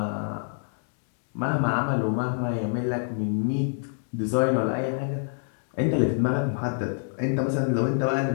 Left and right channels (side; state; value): right; silent; digital silence